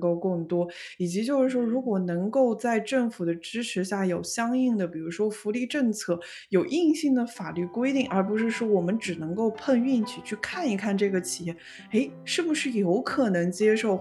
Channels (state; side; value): identical; both; correlation 1.00